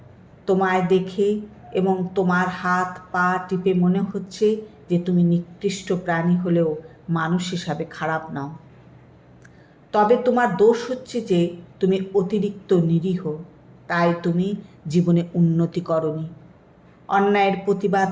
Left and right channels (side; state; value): both; identical; correlation 1.00